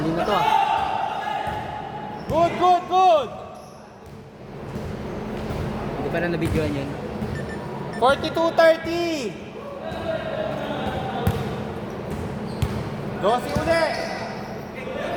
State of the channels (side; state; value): both; identical; correlation 1.00